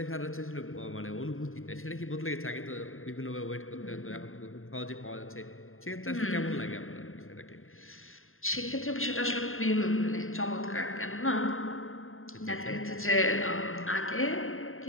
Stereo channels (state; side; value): late; right; 0.60 ms